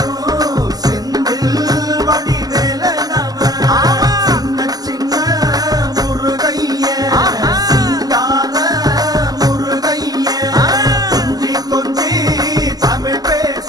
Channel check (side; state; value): left; late; 0.18 ms